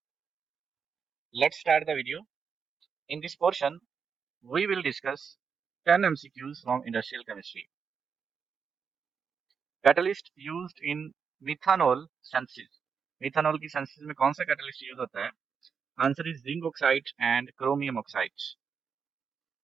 Let's start the video. In this portion, we will discuss 10 MCQs from industrial chemistry. Catalyst used in methanol synthesis. Methanol की synthesis में कौन सा catalyst use होता है? Answer is zinc oxide and chromium oxide.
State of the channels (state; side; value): quieter; left; 6.2 dB